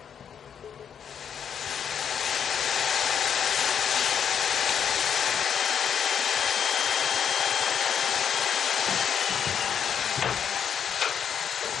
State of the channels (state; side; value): quieter; right; 7.9 dB